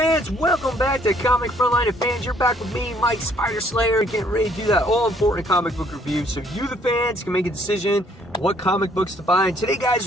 welcome back to Comic Frontline fans. You're back with me, Mike Spider Slayer, getting ready to do that all-important comic book review so you, the fans, can make a decision what comic books to buy. And today, guys,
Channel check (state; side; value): normal; both; correlation 0.64